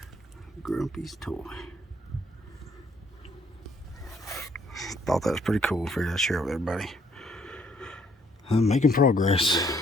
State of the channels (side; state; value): both; normal; correlation 0.67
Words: Grumpy's toy. Thought that was pretty cool. Figured I'd share it with everybody. I'm making progress.